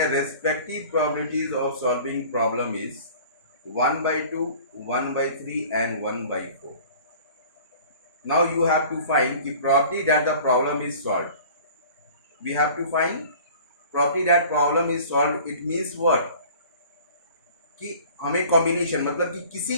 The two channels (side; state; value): both; inverted; correlation -0.45